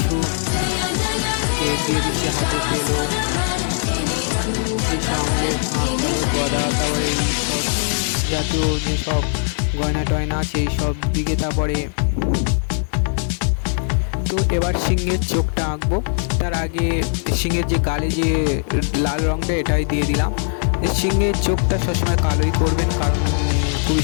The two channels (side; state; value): right; silent; 56 dB below the other